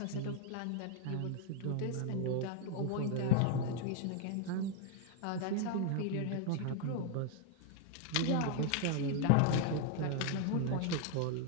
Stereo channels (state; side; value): different; both; correlation 0.00